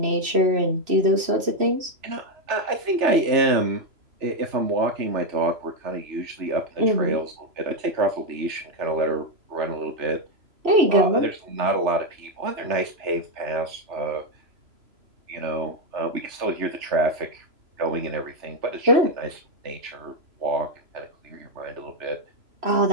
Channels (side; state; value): left; late; 3.0 ms